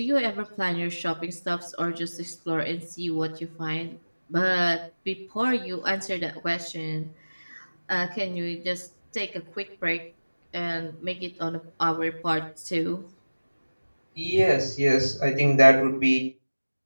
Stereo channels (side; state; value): both; inverted; correlation -1.00